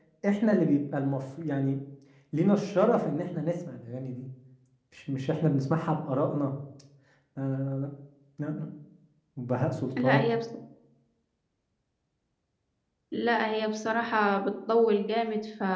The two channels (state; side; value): identical; both; correlation 1.00